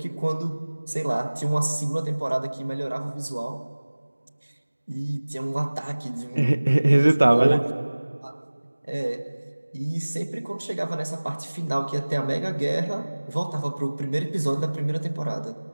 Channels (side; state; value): both; inverted; correlation -1.00